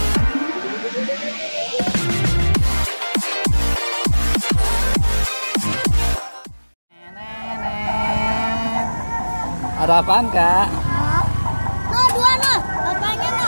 apaan, Kak? Nah, dua noh, bapaknya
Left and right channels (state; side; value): inverted; both; correlation -1.00